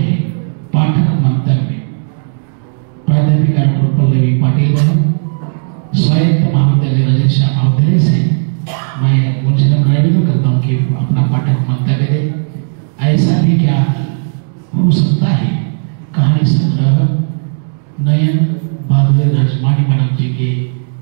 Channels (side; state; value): left; silent; digital silence